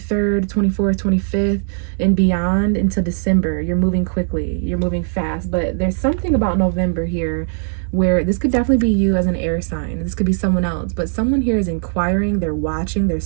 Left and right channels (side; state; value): left; silent; digital silence